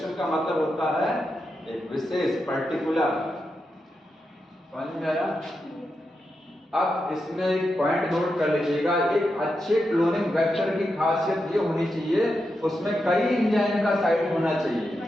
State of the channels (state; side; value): normal; both; correlation 0.87